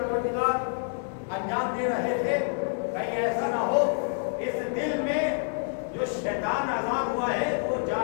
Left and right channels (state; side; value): silent; right; digital silence